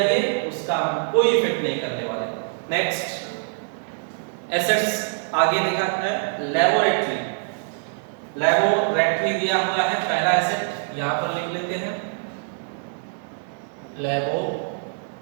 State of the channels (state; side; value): silent; left; digital silence